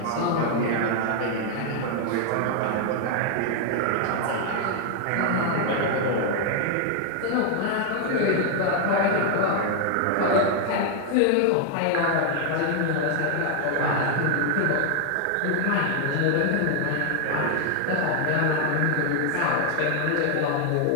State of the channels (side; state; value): both; different; correlation 0.00